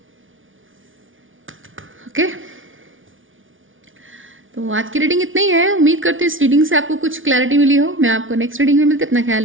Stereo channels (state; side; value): late; left; 0.57 ms